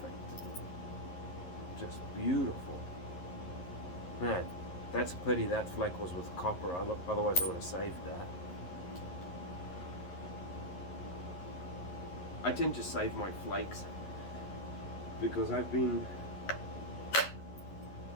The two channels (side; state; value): right; late; 11 ms